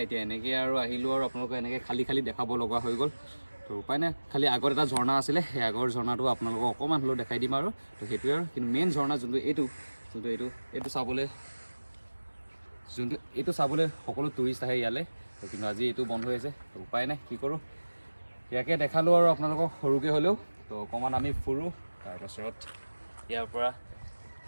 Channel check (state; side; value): inverted; both; correlation -1.00